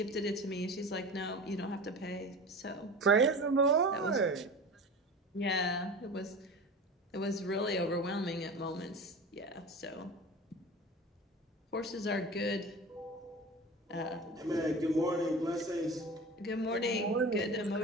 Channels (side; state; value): both; normal; correlation 0.34